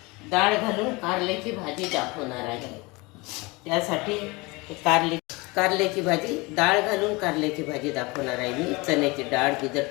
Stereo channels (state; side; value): quieter; right; 25.2 dB